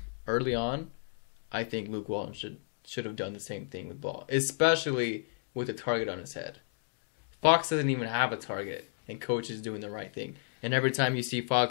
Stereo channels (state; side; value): silent; right; digital silence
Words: early on, I think Luke Walton should have done the same thing with Ball, especially with a target on his head. Fox doesn't even have a target, and Coach is doing the right thing. And every time you see